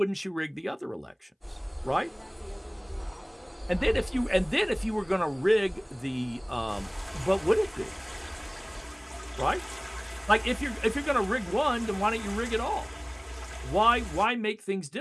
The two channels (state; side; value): identical; both; correlation 1.00